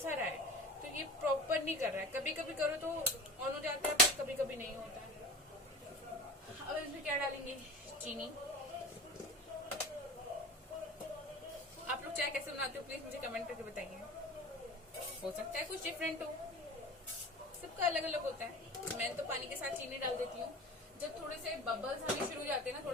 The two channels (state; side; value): normal; both; correlation 0.34